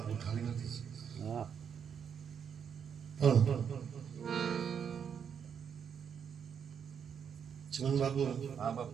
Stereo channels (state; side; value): quieter; left; 7.5 dB